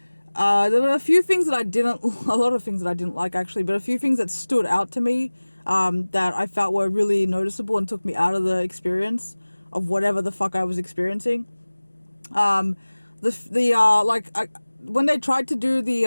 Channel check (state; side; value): inverted; both; correlation -1.00